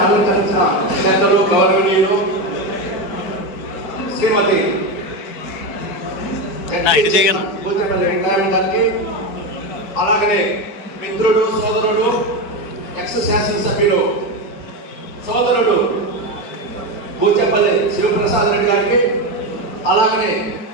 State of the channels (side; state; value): right; late; 4.7 ms